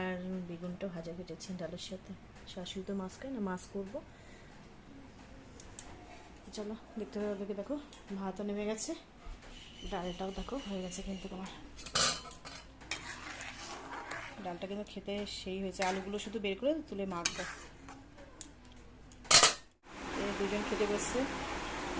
বেগুনটা ভাজা কেটেছি ডালের সাথে। শাশুড়ি তো মাছ খায় না, মাছ করবো। চলো দেখতে দেখে দেখো, ভাতও নেমে গেছে, ডালটাও দেখো হয়ে গেছে। কিন্তু তোমার ডালটা কিন্তু খেতে সেই হয়েছে। আলুগুলো শুধু বের করে তুলে মাখবো। দুজন খেতে বসছে,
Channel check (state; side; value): identical; both; correlation 1.00